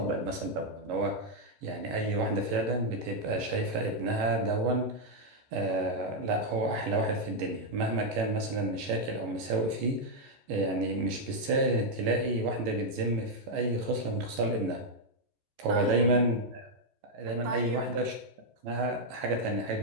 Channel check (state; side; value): late; left; 14 ms